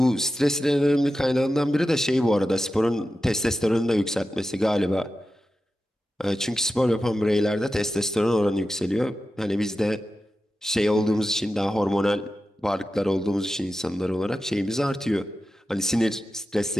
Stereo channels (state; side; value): normal; both; correlation 0.92